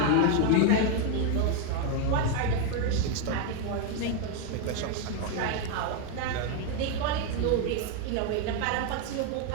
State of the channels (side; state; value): both; different; correlation 0.01